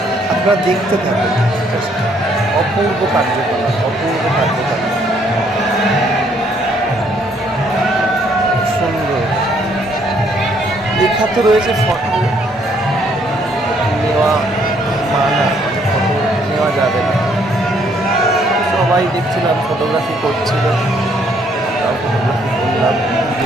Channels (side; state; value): both; normal; correlation 0.67